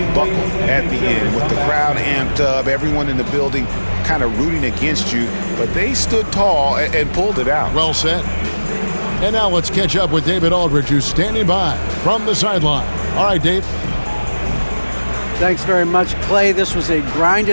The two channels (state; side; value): inverted; both; correlation -1.00